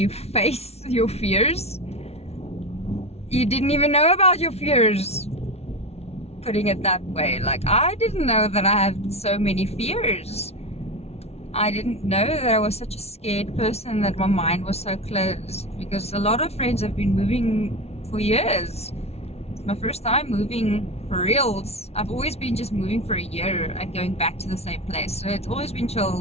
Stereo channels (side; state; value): right; late; 0.31 ms